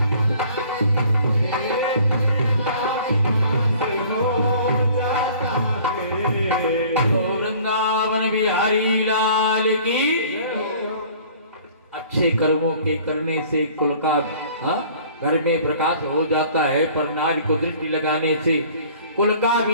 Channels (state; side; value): inverted; both; correlation -0.51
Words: वृंदावन बिहारी लाल की। अच्छे कर्मों के करने से कुल का घर में प्रकाश हो जाता है, पर नारी को दृष्टि लगाने से कुल का